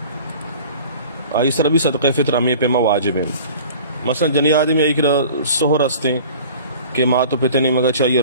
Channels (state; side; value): inverted; both; correlation -0.44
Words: اسرا بھی صدقہ فطر ہمیں پیما واجب ہے. مثلا جنی آدمی ایک سہر رستے کہ ماں تو پتے نہیں مگا چاہیے